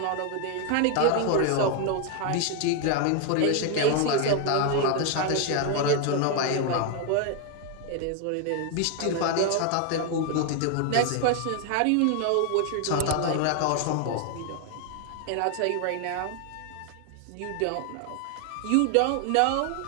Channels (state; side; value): different; both; correlation 0.01